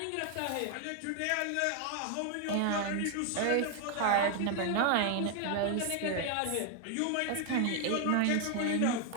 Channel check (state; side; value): different; both; correlation 0.00